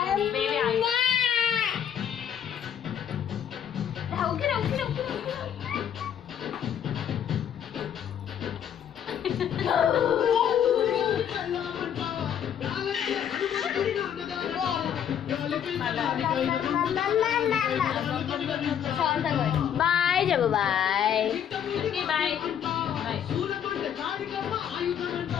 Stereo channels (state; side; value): quieter; right; 9.1 dB